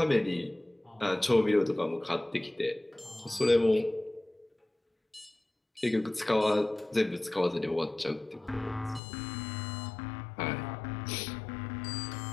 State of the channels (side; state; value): right; drops out; at 9.0 s